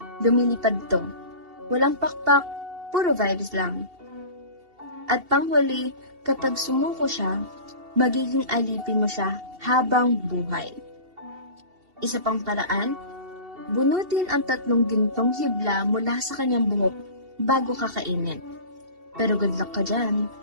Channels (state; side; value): late; left; 2.7 ms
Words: lumilipad to. Walang pakpak, puro vibes lang. At panghuli, kapag sumuko siya, magiging alipin mo siya habang buhay. Isa pang paraan, bunutin ang 3 gintong hibla mula sa kanyang buhok bago kakainin. Pero good luck ka dyan.